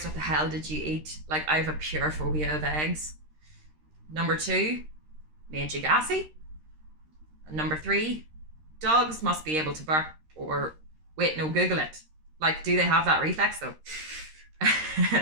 what the hell did you eat? Like, I have a pure phobia of eggs. Number 2, made you gassy. And number 3, dogs must be able to bark or wait, no, Google it. Like, do they have that reflex though?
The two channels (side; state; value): left; late; 13 ms